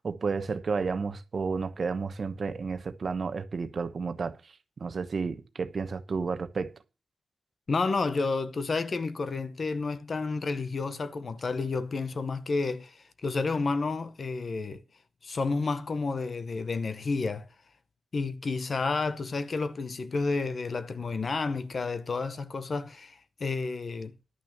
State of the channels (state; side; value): normal; both; correlation 0.89